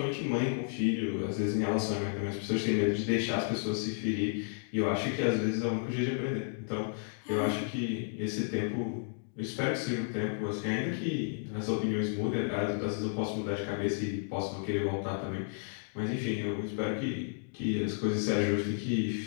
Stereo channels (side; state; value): right; silent; digital silence